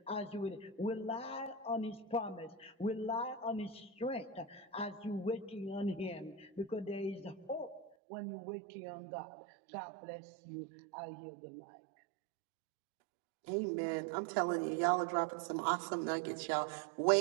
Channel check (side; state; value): left; drops out; at 7.9 s